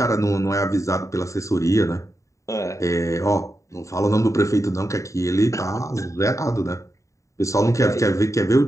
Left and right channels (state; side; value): late; right; 0.15 ms